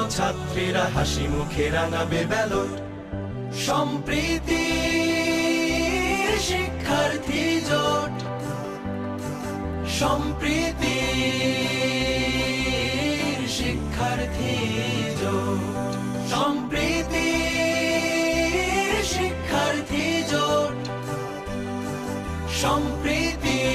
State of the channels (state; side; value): identical; both; correlation 1.00